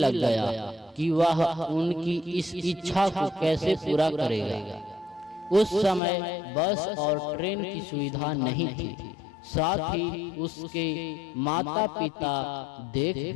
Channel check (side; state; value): right; drops out; at 6.0 s